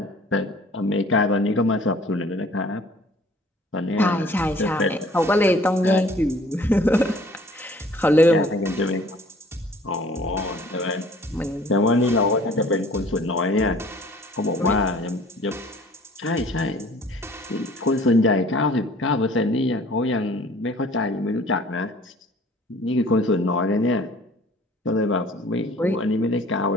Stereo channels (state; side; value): normal; both; correlation 0.52